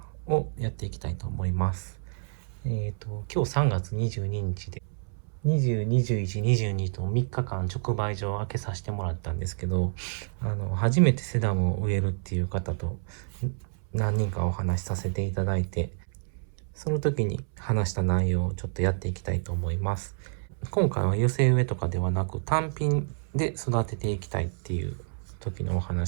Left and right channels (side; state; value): left; silent; 59 dB below the other